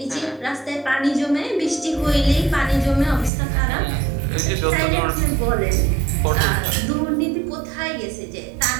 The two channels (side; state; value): left; drops out; at 3.3 s